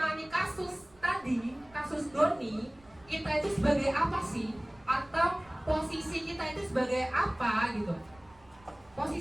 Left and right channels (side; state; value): right; noise; rumble, 28 dB below the sound